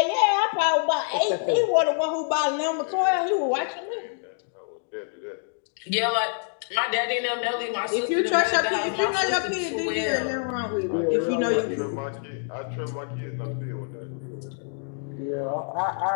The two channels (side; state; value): right; silent; 59 dB below the other